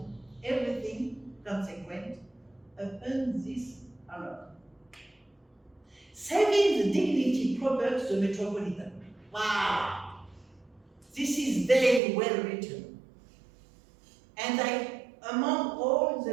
everything consequent upon this honor, saving the dignity proper to the metropolitan. Wow! This is very well written. And among all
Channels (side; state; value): left; drops out; at 12.0 s